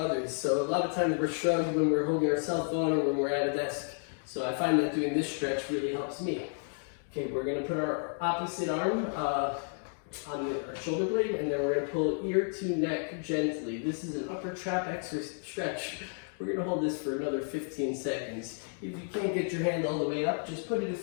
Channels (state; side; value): silent; right; 57 dB below the other